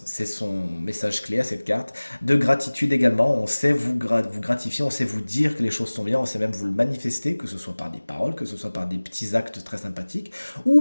c'est son message clé à cette carte, de gratitude également, on sait vous gratifier, on sait vous dire que les choses sont bien, on sait même vous le manifester, que ce soit par des paroles, que ce soit par des petits actes très sympathiques,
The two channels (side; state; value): both; inverted; correlation -1.00